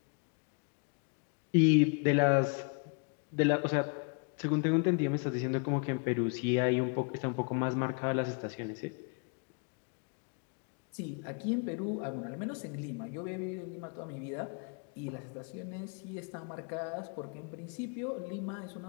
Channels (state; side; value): quieter; right; 37.7 dB